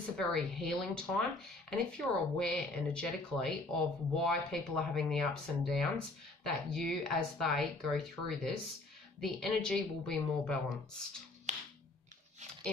a very healing time, and if you're aware energetically of why people are having the ups and downs, that you, as they go through this, the energy will be more balanced.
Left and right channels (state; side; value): quieter; right; 3.0 dB